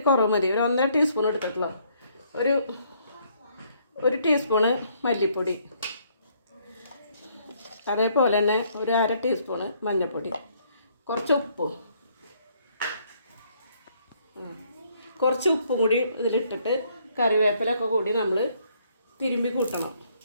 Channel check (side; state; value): both; inverted; correlation -0.67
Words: കുറവ് മതി, ഒരു 1.5 ടീസ്പൂൺ എടുത്തിട്ടുള്ളൂ, ഒരു ടീസ്പൂണ് മല്ലിപ്പൊടി, അതേപോലെ തന്നെ ഒരു 1/2 ടീസ്പൂണ് മഞ്ഞൾപ്പൊടി, കുറച്ച് ഉപ്പും കൂടി ഇതിലിട്ടിട്ട് കറിവേപ്പിലൊക്കെ കൂടി നമ്മൾ തിരുമ്പി കൂട്ടണം.